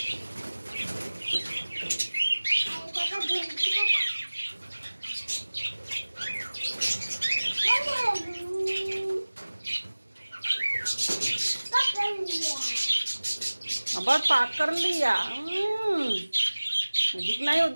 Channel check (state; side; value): inverted; both; correlation -1.00